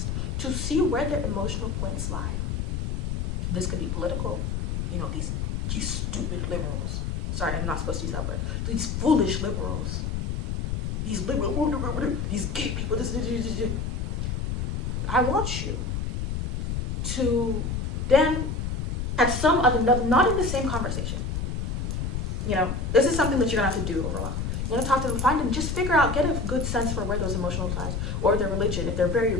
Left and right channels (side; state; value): left; noise; rumble, 1 dB below the sound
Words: to see where their emotional points lie. This could be political. These stupid liberals. Sorry, I'm not supposed to use that word. These foolish liberals. these liberal, these gay people, I want you to then, at some other, not in the same conversation, this is something that you're gonna have to do over a while. You want to talk to them, find them, just figure out, get a good sense for where those emotional ties, or their religion, if they're very